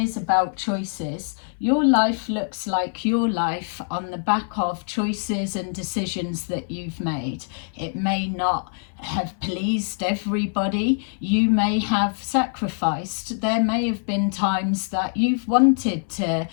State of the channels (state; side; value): silent; right; 61 dB below the other